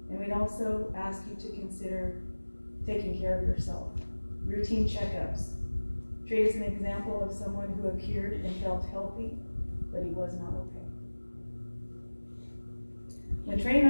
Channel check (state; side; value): inverted; both; correlation -1.00